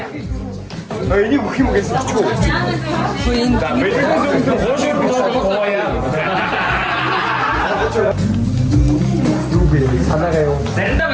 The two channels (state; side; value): identical; both; correlation 1.00